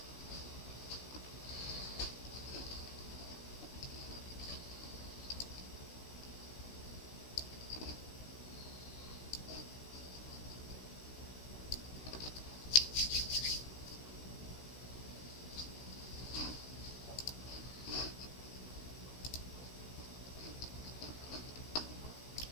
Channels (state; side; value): late; right; 16 ms